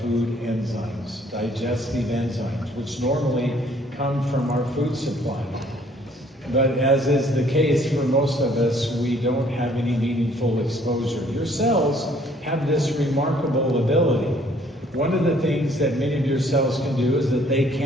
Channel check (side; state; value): both; normal; correlation 0.61